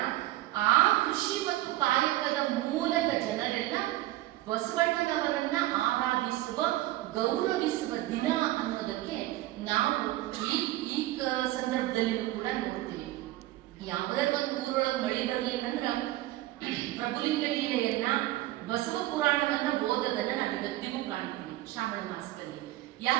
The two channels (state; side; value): quieter; left; 16.4 dB